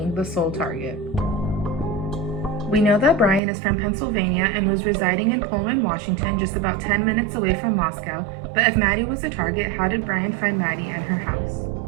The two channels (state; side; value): drops out; left; at 3.4 s